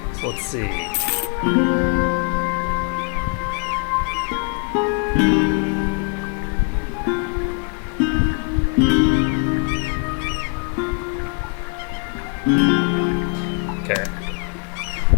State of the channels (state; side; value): quieter; right; 36.7 dB